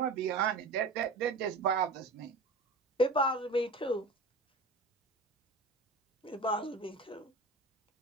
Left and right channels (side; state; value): left; quieter; 3.1 dB